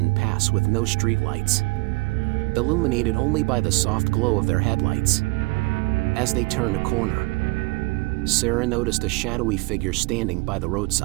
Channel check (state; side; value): quieter; left; 25.2 dB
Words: pass with no streetlights, illuminated only by the soft glow of their headlights. As they turned a corner, Sarah noticed a shadowy figure standing by the